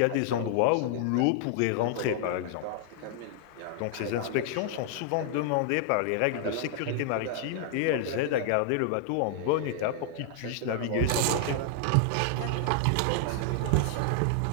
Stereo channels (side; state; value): both; different; correlation -0.01